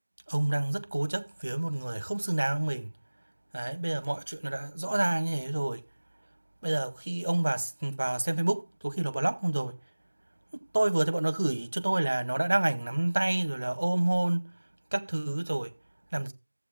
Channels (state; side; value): inverted; both; correlation -1.00